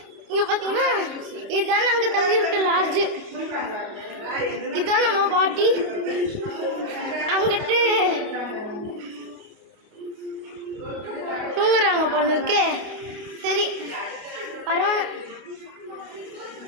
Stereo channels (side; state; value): left; late; 29 ms